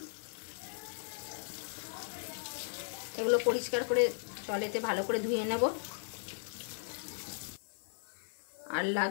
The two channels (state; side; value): silent; right; 53 dB below the other